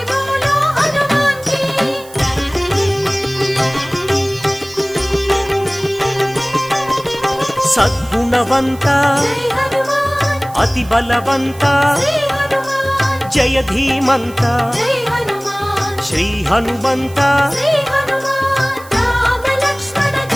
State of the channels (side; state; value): right; noise; hiss, 21 dB below the sound